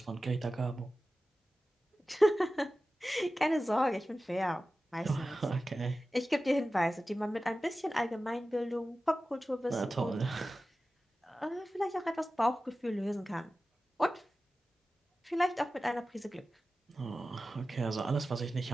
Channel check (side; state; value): both; normal; correlation 0.95